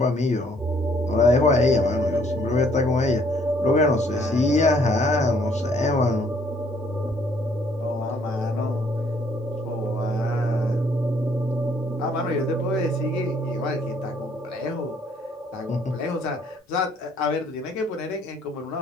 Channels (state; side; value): normal; both; correlation 0.63